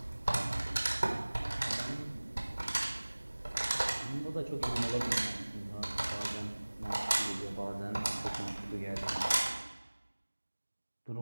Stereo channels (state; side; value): inverted; both; correlation -1.00